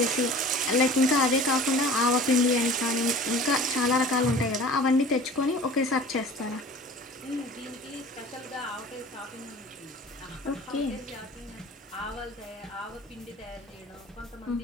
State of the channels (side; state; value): both; normal; correlation 0.43